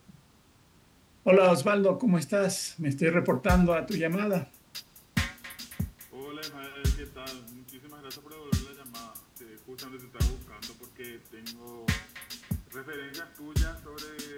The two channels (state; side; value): identical; both; correlation 1.00